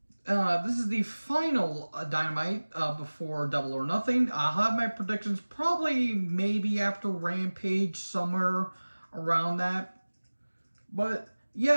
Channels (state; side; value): inverted; both; correlation -1.00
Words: This is the final Dynamite before Double or Nothing. I'll have my predictions probably maybe after Rampage, somewhere around that. But